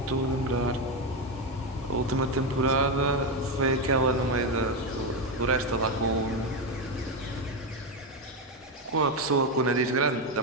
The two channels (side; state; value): both; normal; correlation 0.10